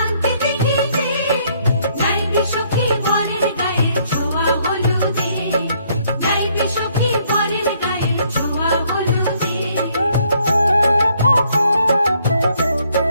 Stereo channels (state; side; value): inverted; both; correlation -0.67